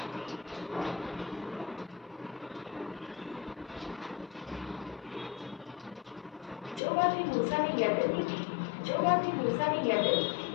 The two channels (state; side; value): drops out; right; at 6.8 s